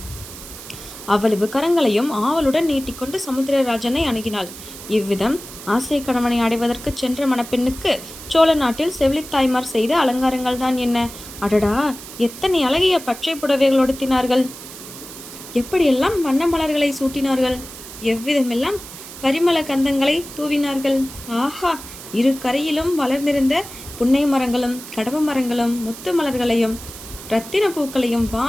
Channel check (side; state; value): right; noise; hiss, 14 dB below the sound